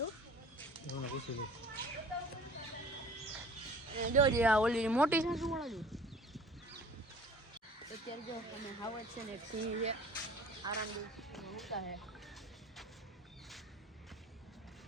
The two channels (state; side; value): normal; both; correlation 0.47